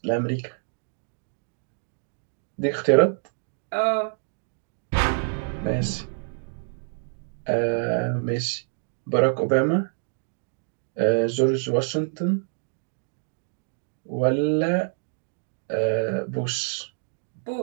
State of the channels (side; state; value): left; silent; digital silence